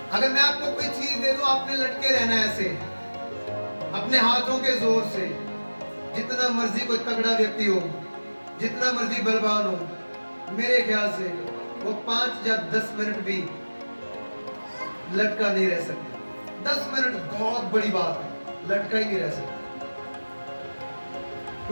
अगर मैं आपको कोई चीज दे दूं, आपने लटके रहना है ऐसे अपने हाथों के जोर से। जितना मर्जी कोई तगड़ा व्यक्ति हो, जितना मर्जी बलवान हो, मेरे ख्याल से वो 5 या 10 मिनट भी लटका नहीं रह सकता। 10 मिनट बहुत बड़ी बात है, लटका ही नहीं रह सकता,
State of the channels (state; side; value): inverted; both; correlation -1.00